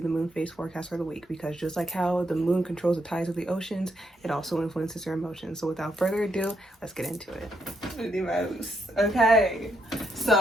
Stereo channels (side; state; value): both; normal; correlation 0.78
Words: the moon phase forecast for the week, because just like how the moon controls the tides of the oceans, it also influences your emotions. So without further ado, let's get into it. Okay,